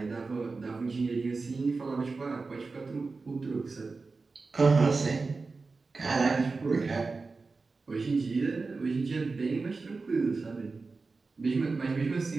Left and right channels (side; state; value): left; quieter; 4.0 dB